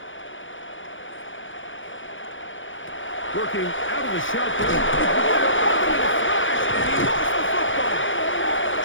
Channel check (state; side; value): late; right; 0.56 ms